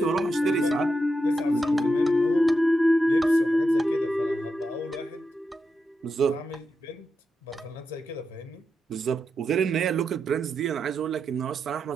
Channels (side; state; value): both; normal; correlation 0.86